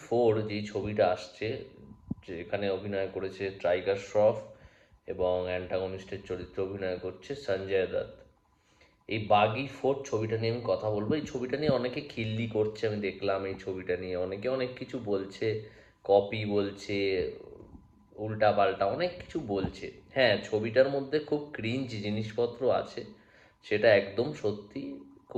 4 যেই ছবিটা আসছে, যেখানে অভিনয় করেছে টাইগার শ্রফ এবং অ্যান্টাগনিস্টের চরিত্রে অভিনয় করছে সঞ্জয় দত্ত। এই বাগি 4 ছবিটা নিয়ে আমি কথা বলবো। এই ছবিটা নিয়ে অনেকে খিল্লি করছে, আমি দেখলাম এই ছবিটা নিয়ে অনেকে অনেক কিছু বলছে, কপি বলছে, উল্টা পাল্টা অনেক কিছু বলছে। হ্যাঁ, ছবিটার মধ্যে খুব ক্রিঞ্জ জিনিসপত্র আছে, সেটা একদম সত্যি।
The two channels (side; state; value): both; identical; correlation 1.00